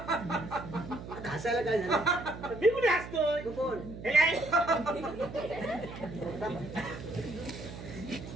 हसायला काय झालं? मी कुठे हसतोय? तू कोण? हे काय?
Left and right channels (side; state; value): right; noise; hum, 11 dB below the sound